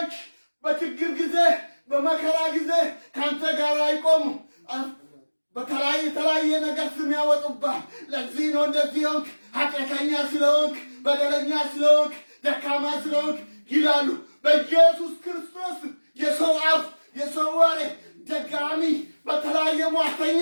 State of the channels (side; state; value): both; inverted; correlation -1.00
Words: በችግር ጊዜ በመከራ ጊዜ ካንተ ጋር አይቆሙ። የተለያየ ነገር ስም ያወጡብሃል። ለዚህ ነው እንደዚህ ሆንክ፣ ኃጢአተኛ ስለሆንክ፣ በደለኛ ስለሆንክ፣ ደካማ ስለሆንክ ይላሉ። በኢየሱስ ክርስቶስ የሰው አፍ የሰው ወሬ ደጋሚ በተለያየ ሟርተኛ